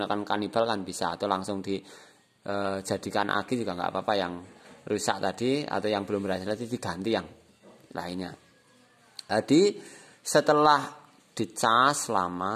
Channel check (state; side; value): identical; both; correlation 1.00